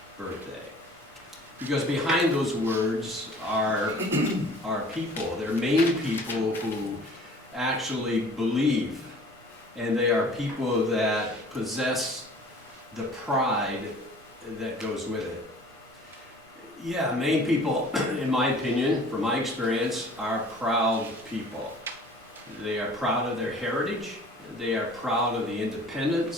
birthday. Because behind those words are people. They're Maine people who actually believe, and they are people that possess the pride that goes with it. Yeah, Maine people, in my opinion, from my experience, are proud people. They are proud of their heritage. They are proud of the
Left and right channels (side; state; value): both; normal; correlation 0.48